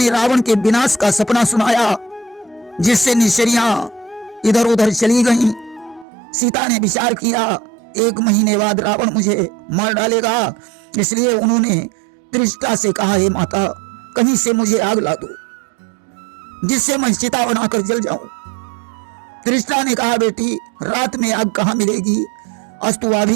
रावण के विनाश का सपना सुनाया, जिससे निश्चरियां इधर उधर चली गईं। सीता ने विचार किया, 1 महीने बाद रावण मुझे मार डालेगा, इसलिए उन्होंने त्रिष्टा से कहा, हे माता, कहीं से मुझे आग ला दो जिससे मैं चिता बनाकर जल जाऊं। त्रिष्टा ने कहा, बेटी, रात में आग कहां मिलेगी, अस्तुआ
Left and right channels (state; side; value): drops out; left; at 6.1 s